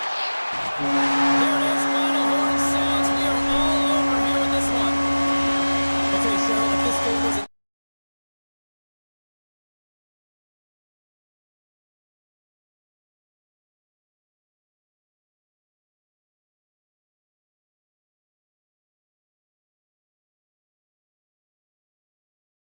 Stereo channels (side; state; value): both; inverted; correlation -1.00